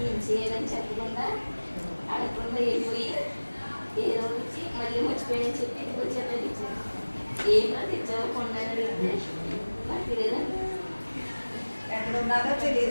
ఏం చేయాలని చెప్పకుండా అడగకుండా వెళ్ళిపోయి ఏదో వచ్చి మళ్ళీ మర్చిపోయాని చెప్పి ఇంటికి వచ్చారని ఇచ్చారు. ఏమో తెచ్చావు కొన్నాను అడిగితే నాకు తెలియదండి. ఎక్కడ ఉన్నదో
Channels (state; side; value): inverted; both; correlation -1.00